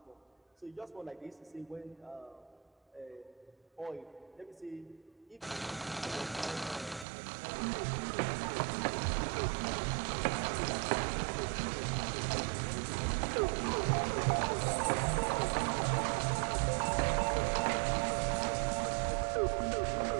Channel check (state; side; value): drops out; left; at 7.1 s